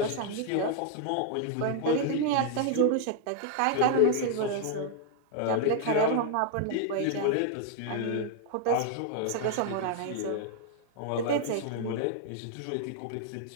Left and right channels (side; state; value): both; different; correlation 0.00